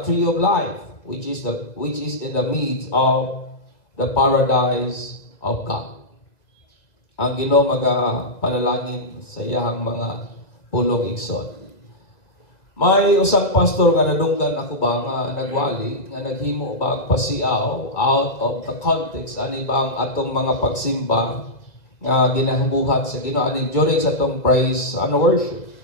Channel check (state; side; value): late; right; 2.2 ms